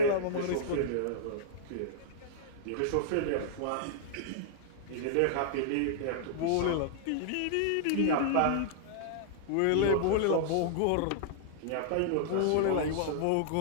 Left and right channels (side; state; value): both; different; correlation -0.01